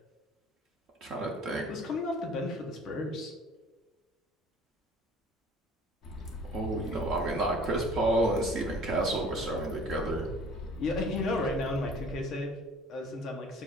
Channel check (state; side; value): normal; both; correlation 0.50